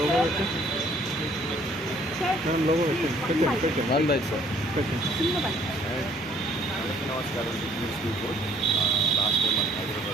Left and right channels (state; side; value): normal; both; correlation 0.61